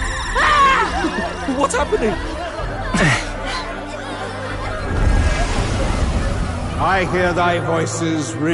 What's happening? I hear thy voices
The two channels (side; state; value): both; identical; correlation 1.00